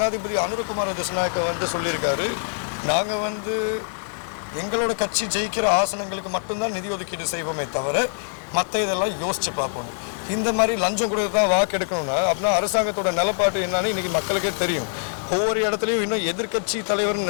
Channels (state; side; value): silent; right; digital silence